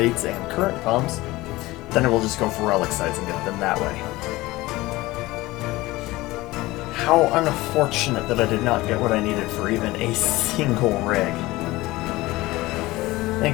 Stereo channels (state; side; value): quieter; right; 19.5 dB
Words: and current pumps, then I will just go for relic sites and get them that way. How unfortunate that I did not get what I needed for even a single rig.